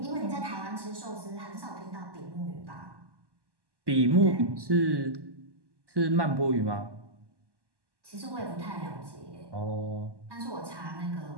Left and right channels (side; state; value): left; late; 1.1 ms